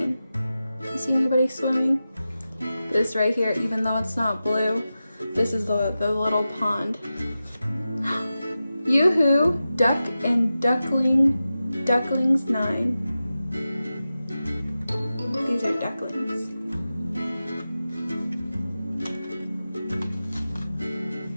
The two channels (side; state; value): both; inverted; correlation -0.93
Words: You see anybody swimming? This right here, even though it's not blue, this is the little pond. Yoo-hoo, duck and ducklings 9. These are ducklings.